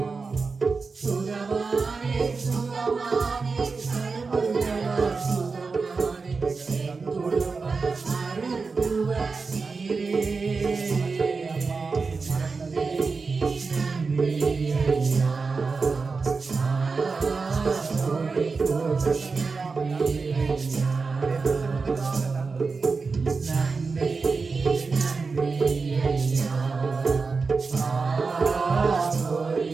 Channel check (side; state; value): left; quieter; 4.5 dB